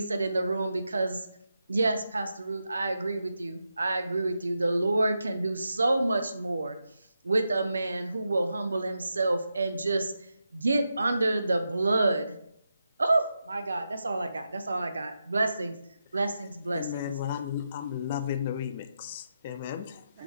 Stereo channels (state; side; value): inverted; both; correlation -0.87